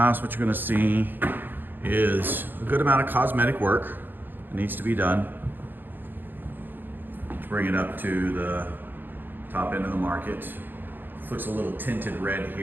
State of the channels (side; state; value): left; late; 0.092 ms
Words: what you're going to see is a good amount of cosmetic work that needs to be done to bring it up to the top end of the market. This looks a little tinted red